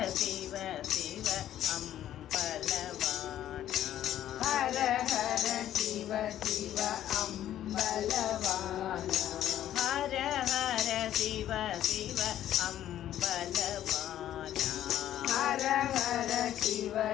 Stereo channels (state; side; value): quieter; right; 11.9 dB